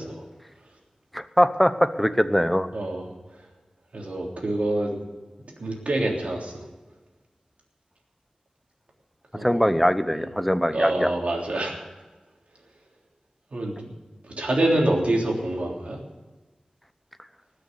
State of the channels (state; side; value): normal; both; correlation 0.96